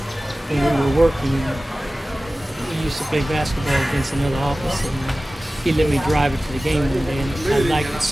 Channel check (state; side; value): normal; both; correlation 0.96